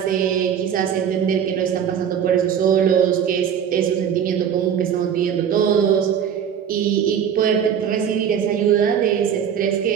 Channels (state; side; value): quieter; left; 8.4 dB